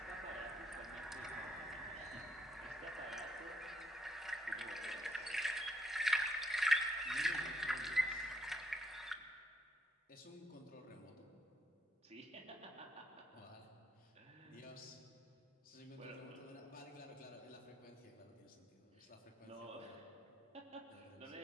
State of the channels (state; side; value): normal; both; correlation 0.73